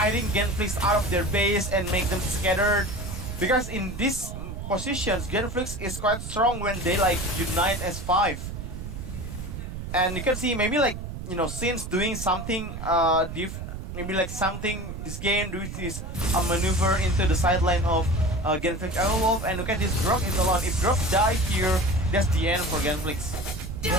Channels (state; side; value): noise; right; rumble, 7 dB below the sound